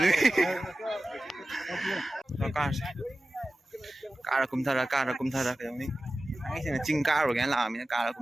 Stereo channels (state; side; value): normal; both; correlation 0.95